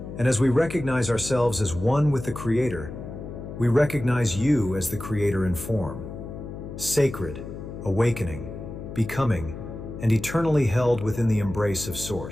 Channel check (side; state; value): left; noise; hum, 10 dB below the sound